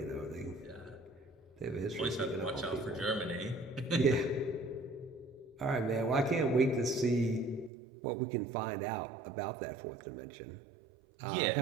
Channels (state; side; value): drops out; left; at 7.7 s